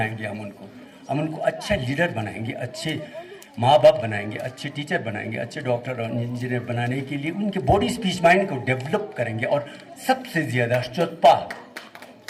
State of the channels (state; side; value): identical; both; correlation 1.00